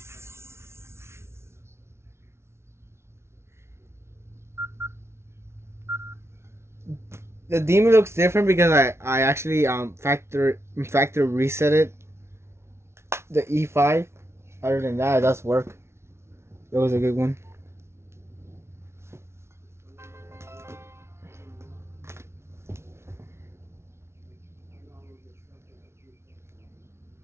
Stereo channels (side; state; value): left; late; 0.13 ms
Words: the demon looks different because I actually factor reset it, the E5. Other than that, it does work. It was a good one.